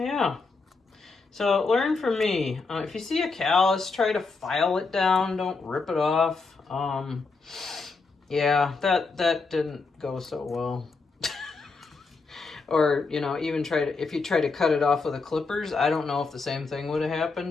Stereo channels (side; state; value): right; quieter; 4.2 dB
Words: so learn from me. If you see a callus, try to file it down, don't rip it off. Yeah, that didn't go so well. Or, you know, even if you try to cut it off with the clippers, I don't know if the same thing would have